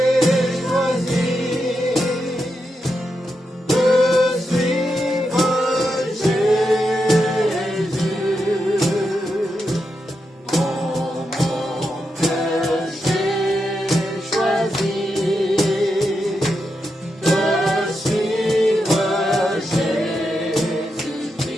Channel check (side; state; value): both; normal; correlation 0.86